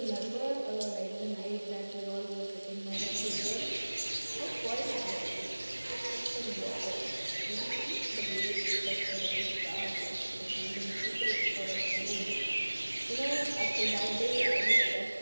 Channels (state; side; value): inverted; both; correlation -1.00